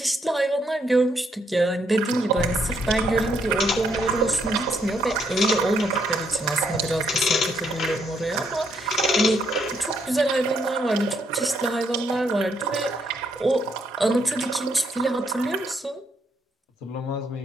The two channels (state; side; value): normal; both; correlation 0.74